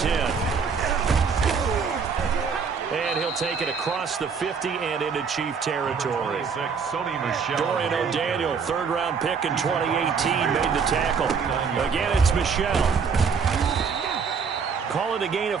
And he'll take it across the 50 and into Chief territory. Dorian O'Daniel, 3rd-round pick in 2018, made the tackle. Again, it's Michelle. Call it a gain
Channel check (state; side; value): quieter; left; 5.9 dB